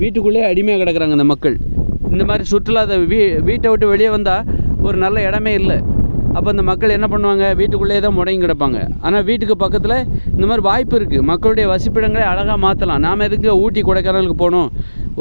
வீட்டுக்குள்ளே அடிமையாக கிடக்கிறாங்க இந்த மக்கள். இந்த மாதிரி சுற்றுலா வீட்டை விட்டு வெளியே வந்தால் ஒரு நல்ல இடமே இல்லை. அப்போ இந்த மக்கள் என்ன பண்ணுவாங்க, வீட்டுக்குள்ளே தான் முடங்கி கிடப்பாங்க. ஆனால் வீட்டுக்கு பக்கத்தில் இந்த மாதிரி வாய்ப்பு இருக்குது, மக்களுடைய வசிப்பிடங்களை அழகாக மாற்றலாம். நாம் எதுக்கு ஊட்டி கொடைக்கானலுக்கு போகணும்?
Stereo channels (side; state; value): both; inverted; correlation -1.00